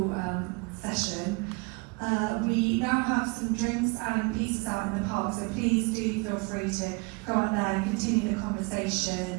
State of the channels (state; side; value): quieter; left; 29.4 dB